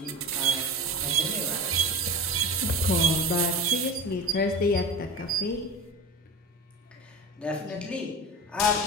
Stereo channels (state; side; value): normal; both; correlation 0.30